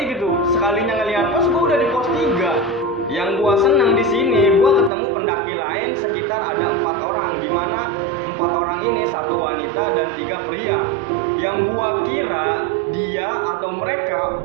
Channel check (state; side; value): drops out; left; at 4.9 s